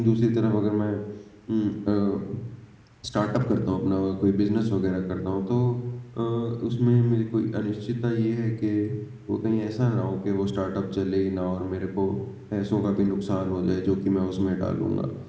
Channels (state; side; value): identical; both; correlation 1.00